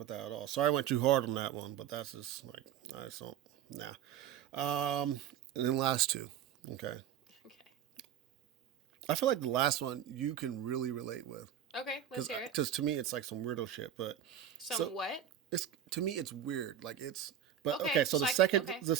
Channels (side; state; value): left; quieter; 9.9 dB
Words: that at all. Sorry, I went too hard on that one, but that's just like I just don't. Nah. And then last two. Okay. Okay. I feel like the last one you can really relate with. Okay, let's hear it. Because to me it's like some weirdo shit, but Some what? it's to me it's weird. Like it's but Okay, okay, so okay. the